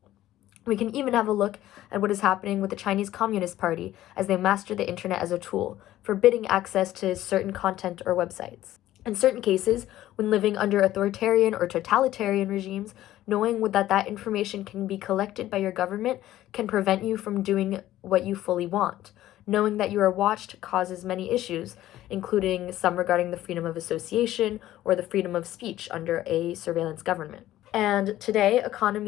We can even have a look at what is happening with the Chinese Communist Party as they master the internet as a tool, forbidding access to certain content or websites. In certain cases, when living under authoritarian or totalitarian regimes, knowing that information can be collected by your government can prevent you from doing what you fully want. Knowing that you are watched causes many issues, including some regarding the freedom of association or the freedom of speech under a surveillance government. And today,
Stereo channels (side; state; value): right; quieter; 14.1 dB